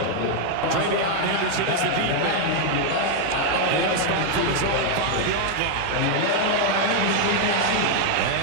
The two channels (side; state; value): both; different; correlation 0.00